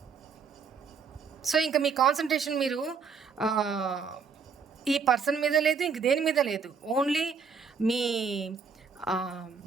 సో ఇంకా మీ కాన్సన్ట్రేషన్ మీరు ఈ పర్సన్ మీద లేదు, ఇంక దేని మీద లేదు. ఓన్లీ మీ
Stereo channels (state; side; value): quieter; left; 5.6 dB